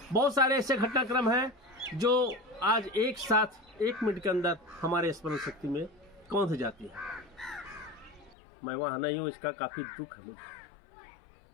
बहुत सारे ऐसे घटनाक्रम हैं जो आज एक साथ 1 मिनट के अंदर हमारे स्मरण शक्ति में कौंध जाती है। मैं वहां नहीं हूं, इसका काफी दुख है मुझे,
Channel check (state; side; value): drops out; right; at 8.3 s